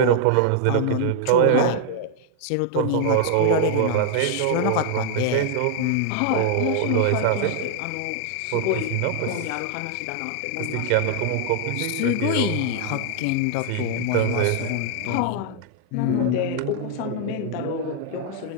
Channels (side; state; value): both; different; correlation 0.00